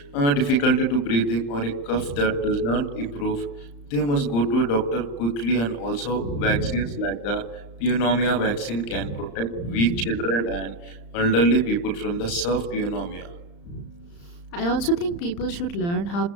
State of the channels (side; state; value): right; late; 35 ms